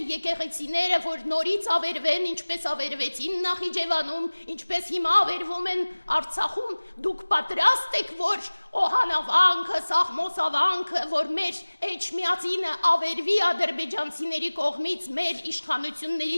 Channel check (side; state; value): both; inverted; correlation -1.00